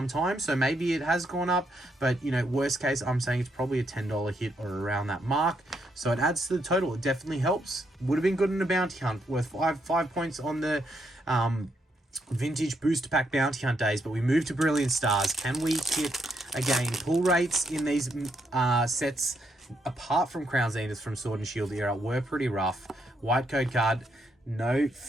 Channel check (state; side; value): normal; both; correlation 0.77